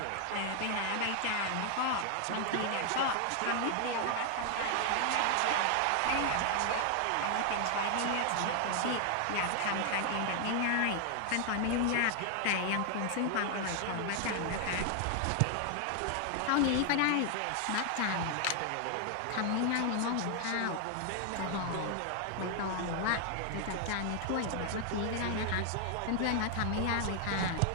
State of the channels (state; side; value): different; both; correlation 0.00